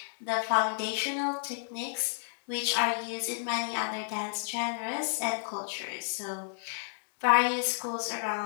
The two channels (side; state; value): right; silent; digital silence